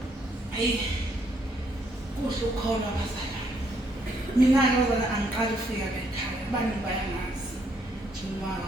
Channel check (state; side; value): normal; both; correlation 0.71